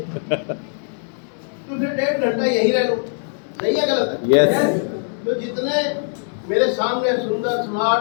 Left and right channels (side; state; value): right; silent; digital silence